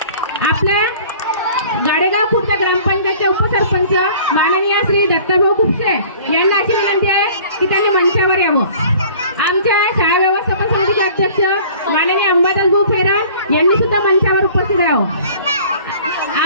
आपल्या गाडेगाव खुर्द ग्रामपंचायतचे उपसरपंच माननीय श्री दत्ताभाऊ खुपसे यांना अशी विनंती आहे की त्यांनी मंचावर यावं. आमच्या शाळा व्यवस्थापन समितीचे अध्यक्ष माननीय अंबादास भाऊ फेरण यांनी सुद्धा मंचावर उपस्थित राहावं.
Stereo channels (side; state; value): both; inverted; correlation -0.49